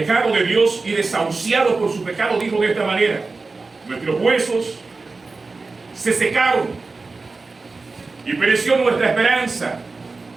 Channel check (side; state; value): left; quieter; 3.9 dB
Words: de Dios y desahuciado por su pecado dijo de esta manera: nuestros huesos se secaron y pereció nuestra esperanza